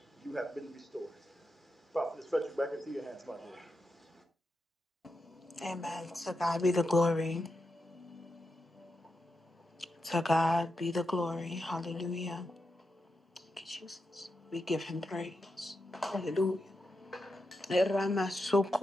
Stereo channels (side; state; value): both; normal; correlation 0.87